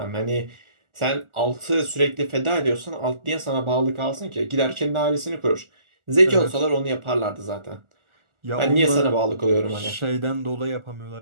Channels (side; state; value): left; late; 1.4 ms